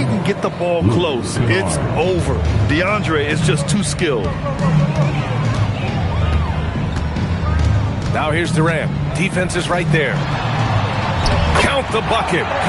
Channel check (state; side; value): identical; both; correlation 1.00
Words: get the ball close, it's over. DeAndre is just too skilled. Now here's Durant. Defense is right there. Count the bucket.